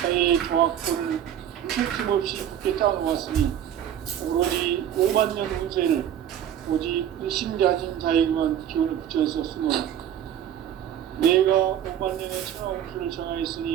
나의 조화권을 무슨 없이 굳게 짜놓았으니 오로지 5만 년 운세를 오직 의심자진 자에게만 기운을 붙여서 쓰노라. 내가 5만 년의 천하 운수를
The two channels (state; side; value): quieter; left; 10.2 dB